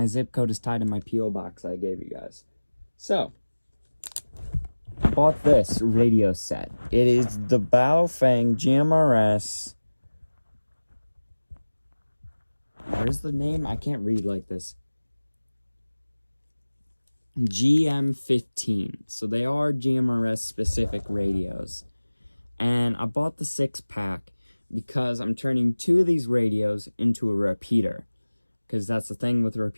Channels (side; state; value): both; inverted; correlation -1.00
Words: zip code is tied in my P.O. box I gave you guys. So, I bought this radio set. It is the Baofeng GMRS. Where's the name? I can't read like this. GM15. So they are GMRS specific radios. And I bought the 6-pack because I'm turning 2 of these radios into a repeater. Because that's the thing with